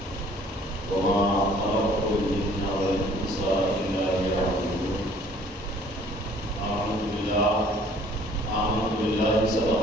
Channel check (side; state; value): both; normal; correlation 0.56